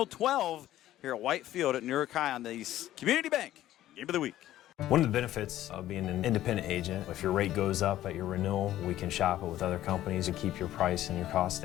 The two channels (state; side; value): quieter; right; 13.5 dB